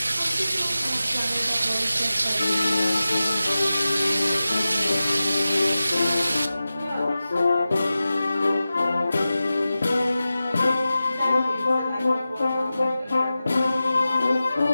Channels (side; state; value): both; inverted; correlation -0.94